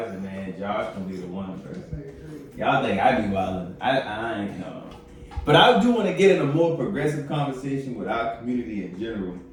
said, man, Josh gonna be the one person. Y'all think I be wildin'. I ain't know. But I do want to get in a more progressive conversation with our community in general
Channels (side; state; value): both; identical; correlation 1.00